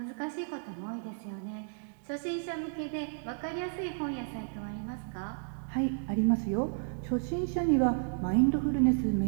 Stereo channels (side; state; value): left; silent; digital silence